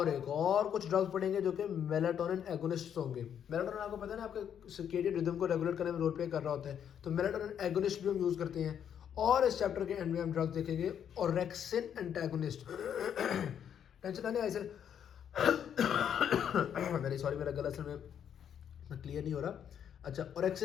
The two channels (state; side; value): quieter; right; 8.8 dB